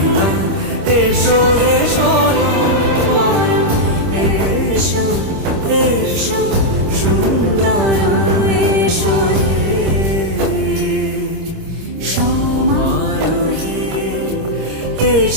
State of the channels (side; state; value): left; late; 26 ms